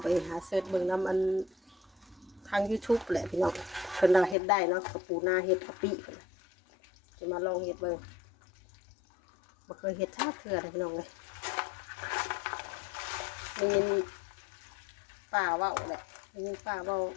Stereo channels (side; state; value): right; drops out; at 4.4 s